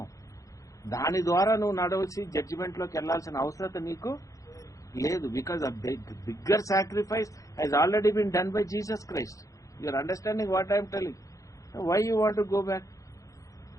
దాని ద్వారా నువ్వు నడవలసి జడ్జిమెంట్లోకి వెళ్లాల్సిన అవసరం నీకు లేదు. Because a bigger sacrifice has already been done by Jesus Christ. You are understanding what I am telling? Why you want to go back?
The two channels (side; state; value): right; late; 0.16 ms